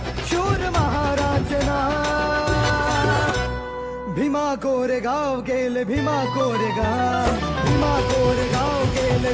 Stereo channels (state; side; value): identical; both; correlation 1.00